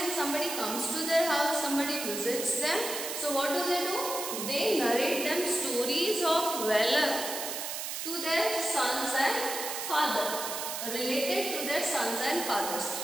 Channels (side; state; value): right; noise; hiss, 5 dB below the sound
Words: somebody comes to their house, somebody visits them. So what do? They narrate them stories of valor to their sons and father, related to their sons and fathers.